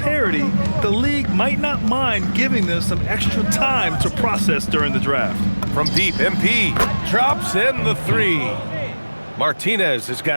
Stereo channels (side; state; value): both; inverted; correlation -1.00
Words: the league might not mind giving them some extra time to process during the draft. From deep, MP drops in the 3. Martinez has